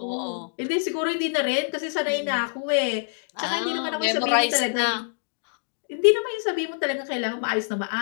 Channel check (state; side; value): silent; right; digital silence